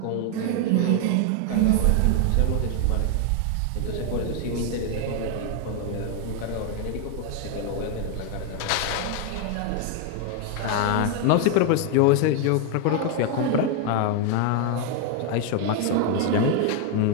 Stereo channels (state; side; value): different; both; correlation 0.01